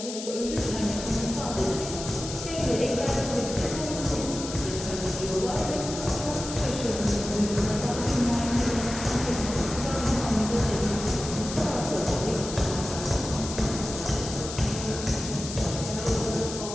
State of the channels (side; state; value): left; noise; hiss, 9 dB below the sound